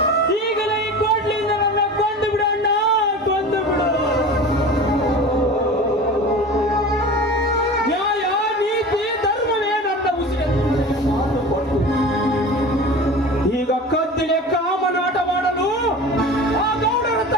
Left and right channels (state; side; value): normal; both; correlation 0.35